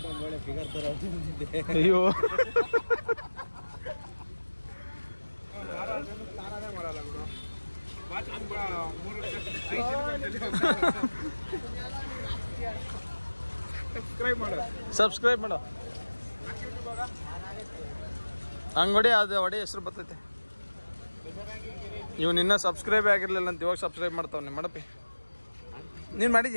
ಅಯ್ಯೋ, ಸಬ್ಸ್ಕ್ರೈಬ್ ಮಾಡೋ. ಹಂಗೊಡಿ, ಅದು ಹೊಡಿ ಹೆಸರು ಬರ್ತೈತೆ. ಇವ್ನು ಇನ್ನೂ ಸಬ್ಸ್ಕ್ರೈಬ್ ಆಗಿರ್ಲಿಲ್ಲ ಅಂತ ಇವಾಗ ಸಬ್ಸ್ಕ್ರೈಬ್ ಮಾಡ್ತಾವನೆ. ಮಾಡಪ್ಪಿ ನೀನು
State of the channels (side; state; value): both; inverted; correlation -1.00